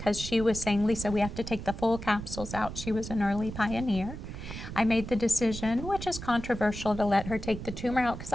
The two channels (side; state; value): right; noise; rumble, 9 dB below the sound